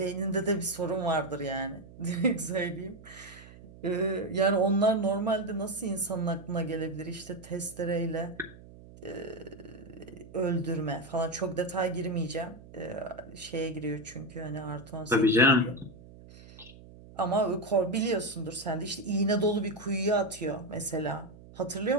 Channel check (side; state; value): right; noise; hum, 19 dB below the sound